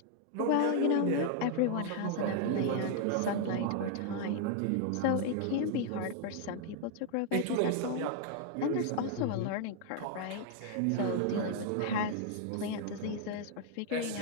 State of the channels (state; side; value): different; both; correlation 0.00